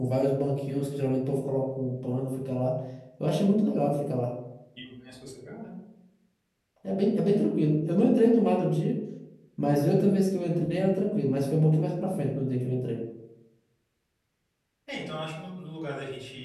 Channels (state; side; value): identical; both; correlation 1.00